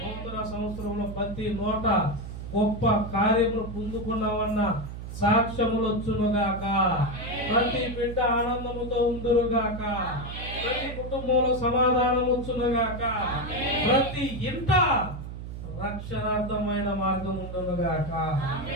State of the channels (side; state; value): right; noise; hum, 9 dB below the sound